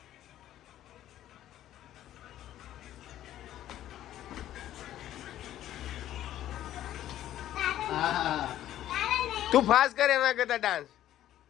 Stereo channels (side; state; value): right; quieter; 12.6 dB